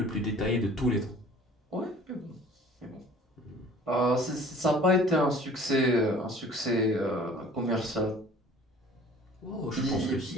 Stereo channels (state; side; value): normal; both; correlation 0.49